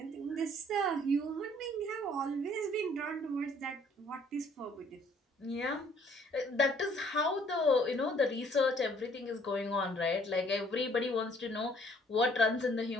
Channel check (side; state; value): both; normal; correlation 0.60